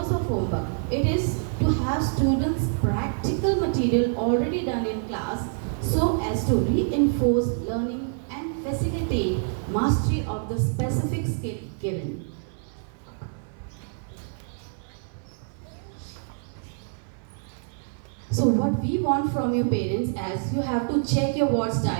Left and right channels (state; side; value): silent; left; 59 dB below the other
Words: of homework? It is to have students practical material already done in class so as to reinforce learning and facilitate mastery of the specific skill given. So what we want from your parents is you have to check your ward's